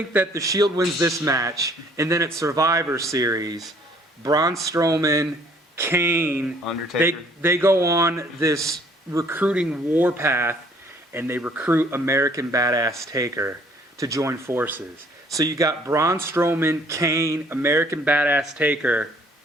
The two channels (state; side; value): normal; both; correlation 0.59